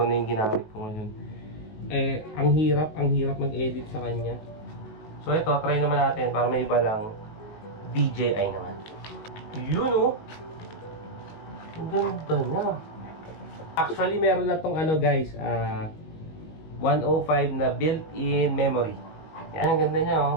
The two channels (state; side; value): late; right; 19 ms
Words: na yung ginamit ko ngayon. Ang hirap mag-edit sa kanya. So ito, try naman natin para may iba lang. DJI naman. Yun Ang ganda niya. Actually, meron na tong ano guys, 105 na built-in memory. Yan, ang ganda niya oh.